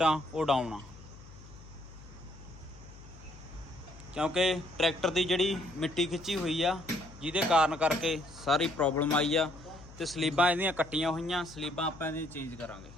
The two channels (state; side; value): noise; left; hum, 18 dB below the sound